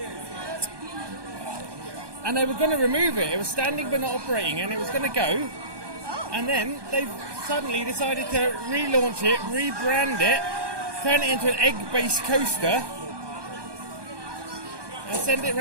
And they were going to remove it. It was standing but not operating, and it was going to go. And then they suddenly decided to relaunch it, rebrand it, turn it into an egg-based coaster, and send it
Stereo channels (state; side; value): late; left; 1.2 ms